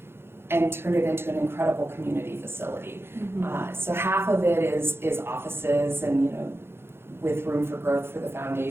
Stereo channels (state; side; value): late; left; 0.11 ms